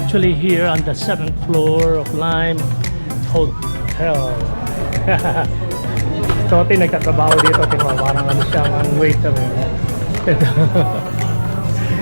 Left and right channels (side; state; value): both; inverted; correlation -1.00